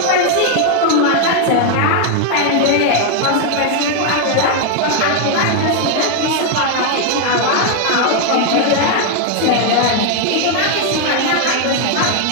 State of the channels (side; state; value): both; different; correlation 0.00